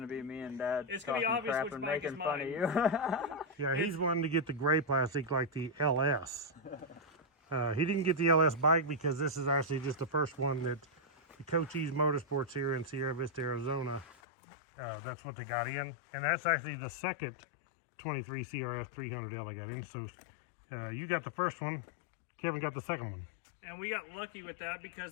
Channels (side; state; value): right; drops out; at 14.1 s